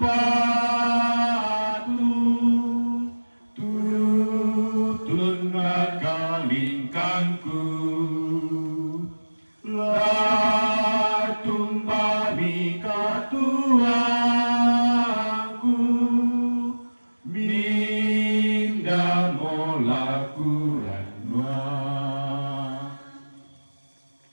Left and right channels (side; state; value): both; inverted; correlation -1.00